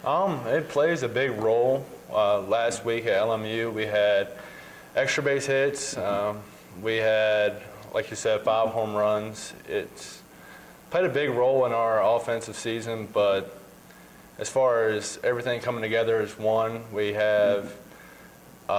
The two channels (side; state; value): both; identical; correlation 1.00